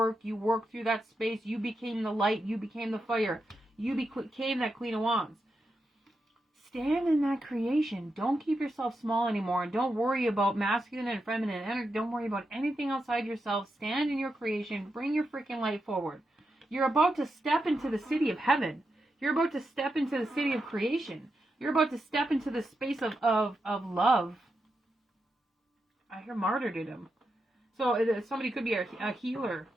You worked through that space. You became the light. You became the fire. You became that Queen of Wands. Stand in that creation. Don't keep yourself small anymore. And don't worry about masculine and feminine energy. Don't worry about anything outside yourself. Stand in your creation. Bring your freaking light forward. You're about to step into the city of heaven. You're about to step into the city of creation. You're about to step into the space of love. I hear martyrdom. So somebody could be a healer.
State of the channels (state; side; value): normal; both; correlation 0.87